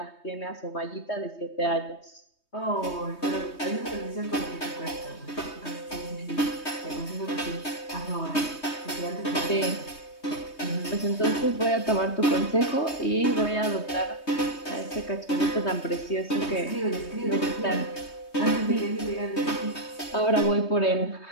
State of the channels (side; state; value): right; late; 3.2 ms